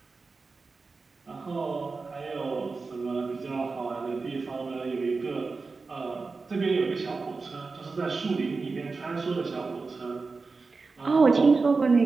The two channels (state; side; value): quieter; left; 4.2 dB